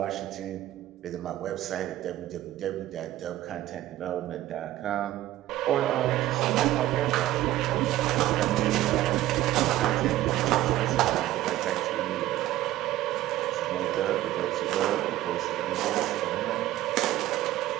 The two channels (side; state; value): left; quieter; 14.8 dB